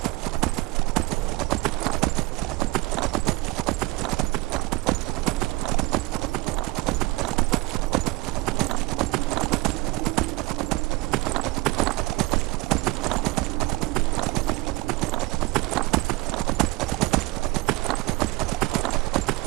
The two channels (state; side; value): quieter; left; 22.5 dB